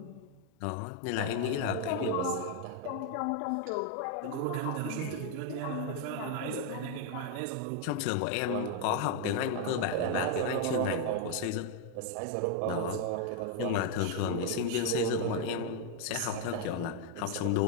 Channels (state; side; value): different; both; correlation 0.00